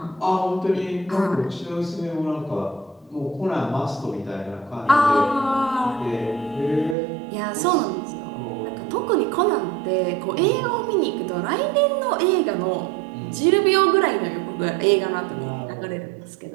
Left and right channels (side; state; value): left; drops out; at 7.0 s